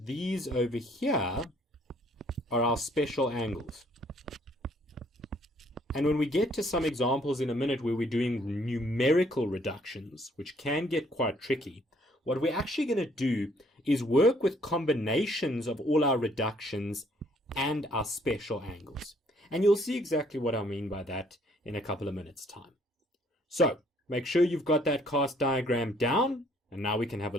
these over here are our special angles. And when we get to some examples in a minute where we're doing numerical reductions, which can get quite tricky, what we're actually going to do is work with combinations of all our reductions and our special angles. And you'll see exactly what I mean by that in a couple of minutes' time. So, make sure you've got that cast diagram down, and now we can have a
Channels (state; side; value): normal; both; correlation 0.64